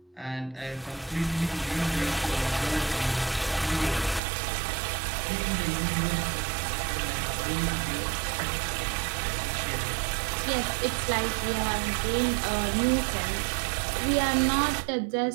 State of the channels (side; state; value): left; drops out; at 4.2 s